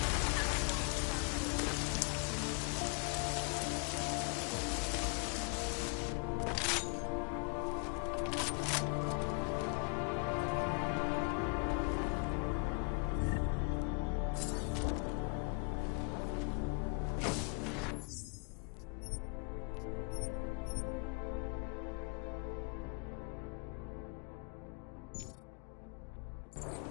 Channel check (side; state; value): right; quieter; 36.2 dB